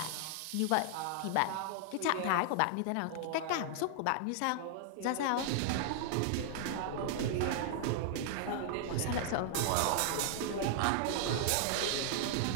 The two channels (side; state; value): both; different; correlation -0.01